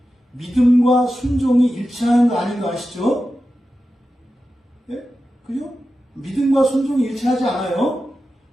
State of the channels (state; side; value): normal; both; correlation 0.92